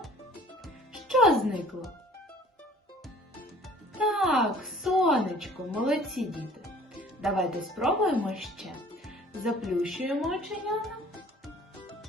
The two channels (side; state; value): both; normal; correlation 0.51